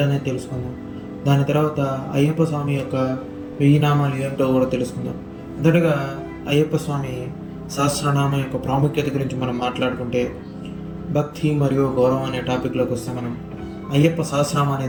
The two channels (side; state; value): both; identical; correlation 1.00